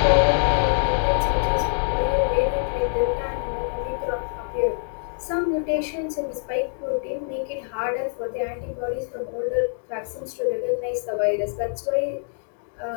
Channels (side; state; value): right; silent; digital silence